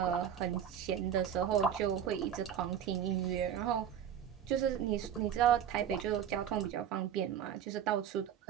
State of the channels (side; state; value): left; quieter; 9.1 dB